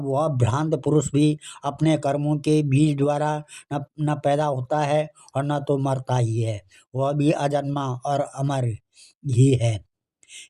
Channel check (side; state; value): both; identical; correlation 1.00